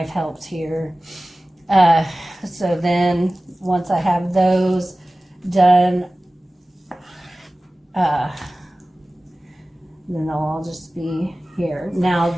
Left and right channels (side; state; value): both; normal; correlation 0.97